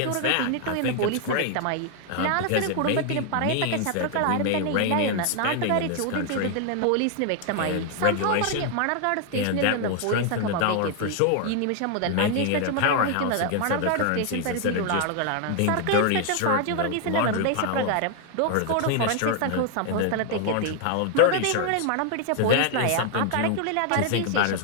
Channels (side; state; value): both; different; correlation 0.00